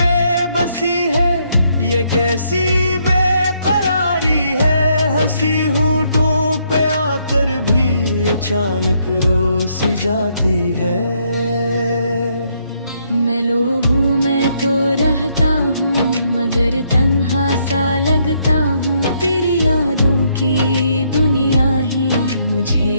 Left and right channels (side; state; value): both; inverted; correlation -0.72